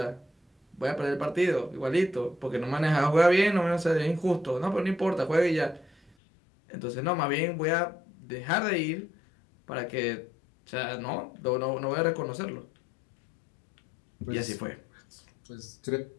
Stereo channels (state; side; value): drops out; right; at 6.1 s